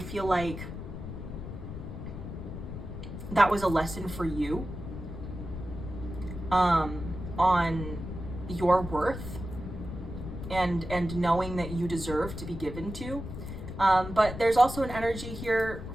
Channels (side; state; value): left; noise; rumble, 8 dB below the sound